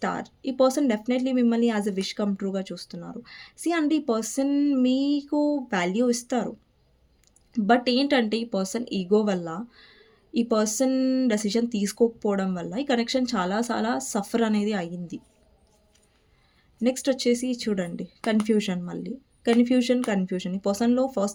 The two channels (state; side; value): identical; both; correlation 1.00